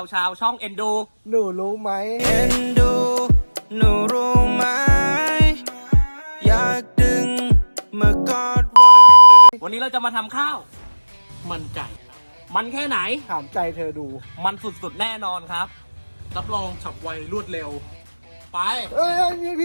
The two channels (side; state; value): both; inverted; correlation -1.00